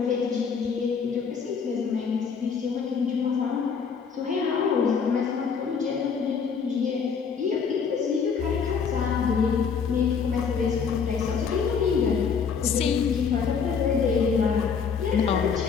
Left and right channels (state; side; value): quieter; right; 6.1 dB